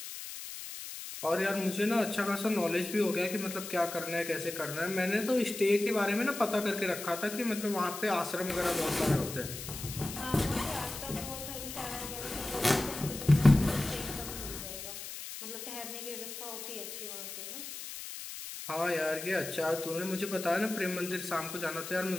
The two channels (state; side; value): noise; left; hiss, 9 dB below the sound